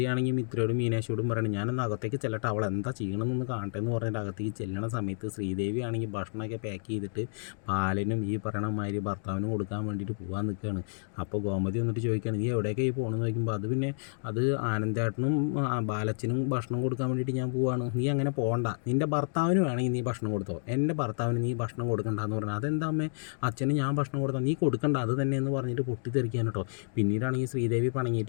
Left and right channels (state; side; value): silent; right; digital silence